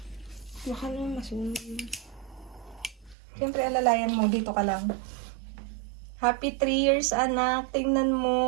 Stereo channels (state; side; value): drops out; left; at 3.2 s